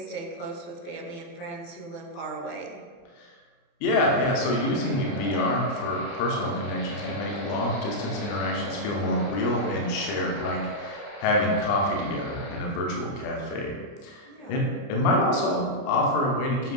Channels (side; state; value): right; late; 29 ms